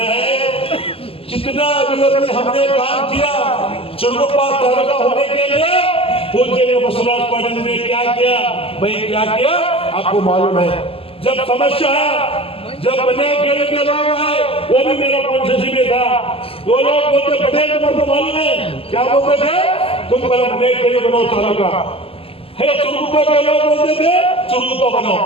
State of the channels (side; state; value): right; late; 0.27 ms